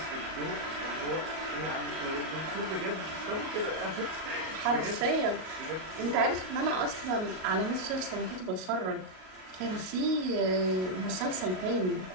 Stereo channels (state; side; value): late; left; 38 ms